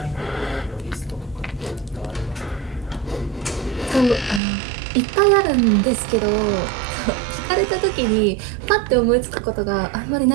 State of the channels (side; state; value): left; drops out; at 4.4 s